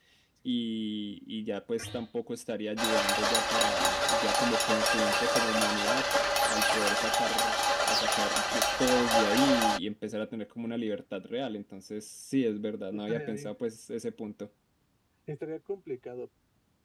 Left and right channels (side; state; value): both; identical; correlation 1.00